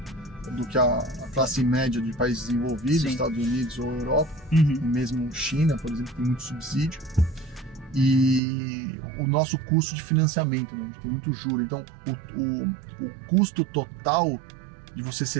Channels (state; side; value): drops out; left; at 8.4 s